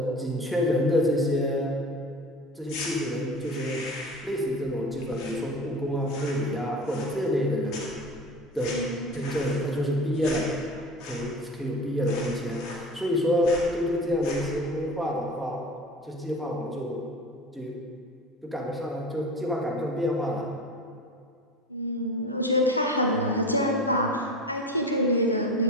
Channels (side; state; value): both; normal; correlation 0.34